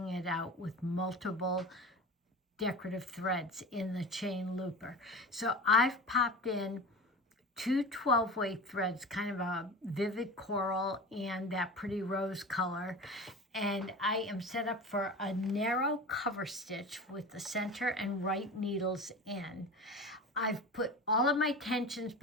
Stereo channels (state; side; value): normal; both; correlation 0.32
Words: it out with multiple decorative threads in the chain looper. So I've popped in 2 12-way threads, kind of a vivid coral and that pretty rose color. And I am set up for a narrow cover stitch with the center and right needles in. I've put all of my tensions